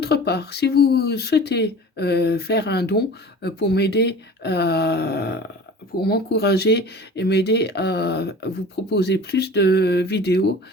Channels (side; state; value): both; normal; correlation 0.41